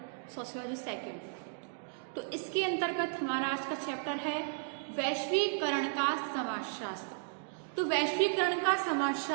sociology second. तो इसके अंतर्गत हमारा आज का चैप्टर है वैश्वीकरण का समाजशास्त्र। तो वैश्वीकरण का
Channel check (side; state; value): left; silent; digital silence